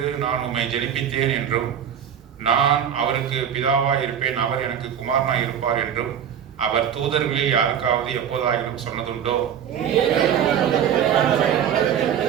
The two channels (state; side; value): quieter; left; 8.9 dB